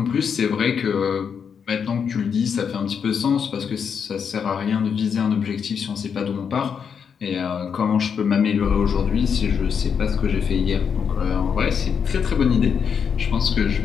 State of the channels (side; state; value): right; quieter; 6.9 dB